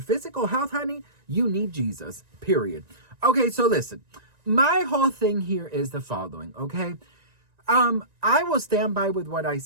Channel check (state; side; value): late; left; 1.9 ms